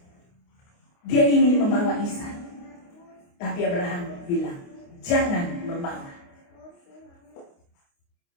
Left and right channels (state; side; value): late; right; 29 ms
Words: Dia ingin membawa Ishak, tapi Abraham bilang, jangan membawa.